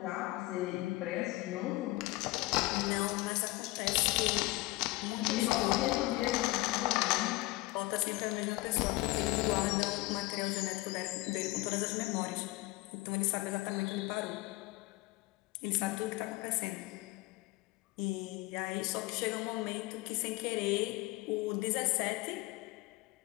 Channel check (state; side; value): quieter; right; 20.8 dB